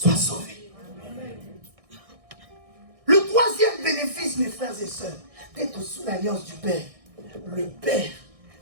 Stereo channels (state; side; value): late; left; 1.6 ms